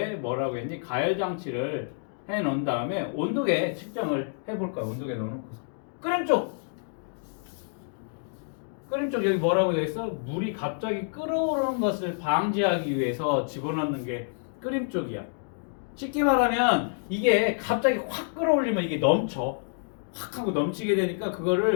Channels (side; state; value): right; silent; digital silence